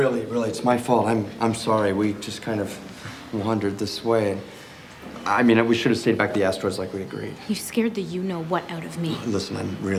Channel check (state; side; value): identical; both; correlation 1.00